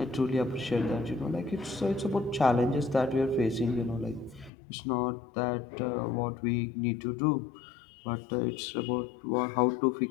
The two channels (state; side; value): drops out; right; at 4.5 s